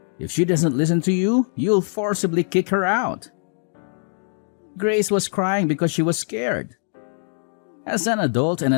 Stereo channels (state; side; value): silent; right; digital silence